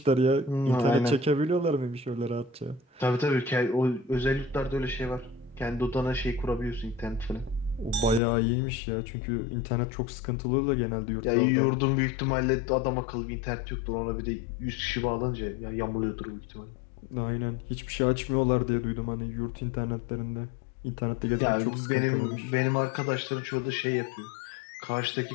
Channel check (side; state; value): right; drops out; at 8.2 s